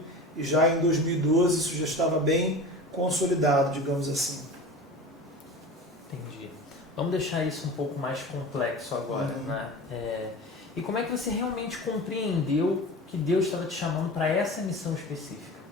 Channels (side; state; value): both; normal; correlation 0.34